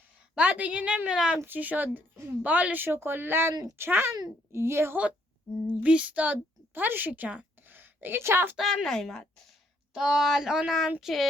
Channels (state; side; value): normal; both; correlation 0.69